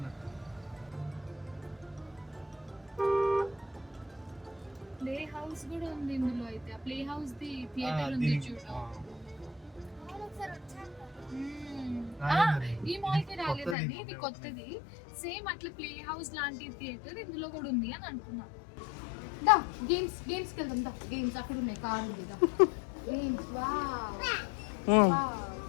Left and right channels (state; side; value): drops out; right; at 13.8 s